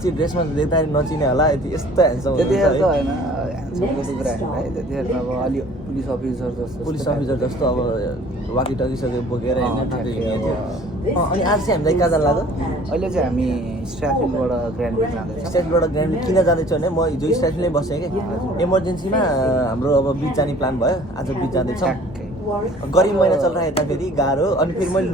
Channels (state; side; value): normal; both; correlation 0.51